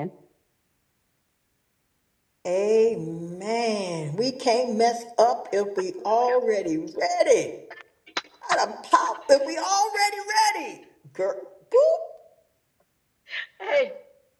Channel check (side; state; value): both; identical; correlation 1.00